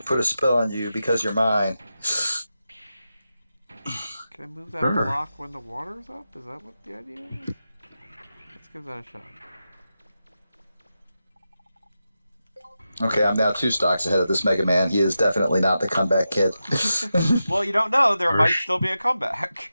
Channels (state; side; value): inverted; both; correlation -0.90